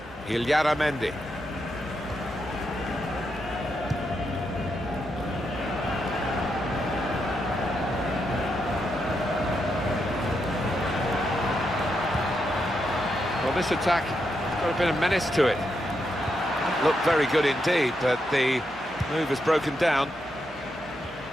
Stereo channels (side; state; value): both; normal; correlation 0.82